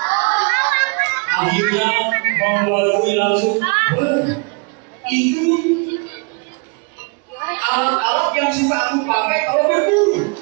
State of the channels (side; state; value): left; quieter; 32.9 dB